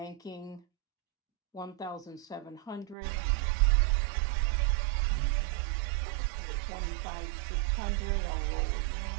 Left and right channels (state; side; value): drops out; left; at 3.0 s